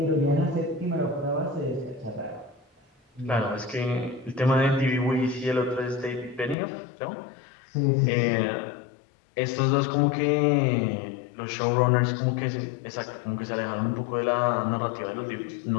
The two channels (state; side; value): drops out; right; at 6.6 s